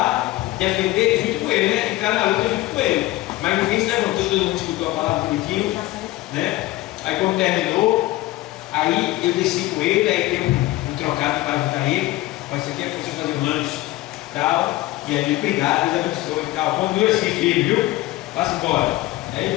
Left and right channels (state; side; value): quieter; right; 17.7 dB